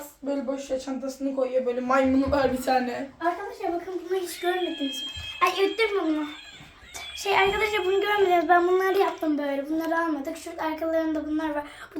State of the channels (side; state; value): both; identical; correlation 1.00